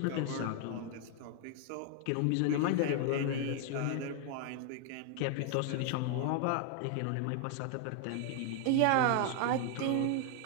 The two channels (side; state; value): both; different; correlation 0.00